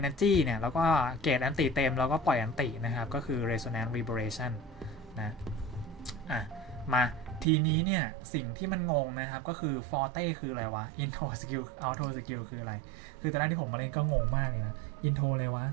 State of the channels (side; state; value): left; drops out; at 7.5 s